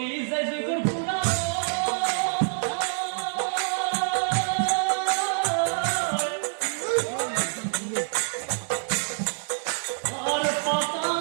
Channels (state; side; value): silent; left; digital silence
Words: যাই জগর পুরা আর